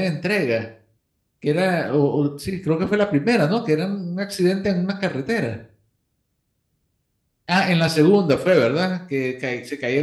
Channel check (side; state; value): both; identical; correlation 1.00